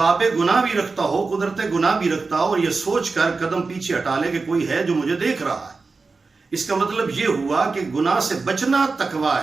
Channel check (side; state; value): left; quieter; 4.1 dB